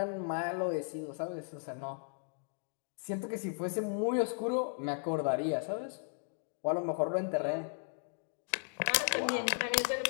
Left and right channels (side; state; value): right; silent; 54 dB below the other